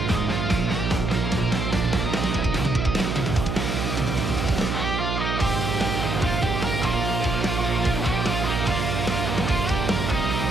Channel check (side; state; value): right; noise; hum, 1 dB below the sound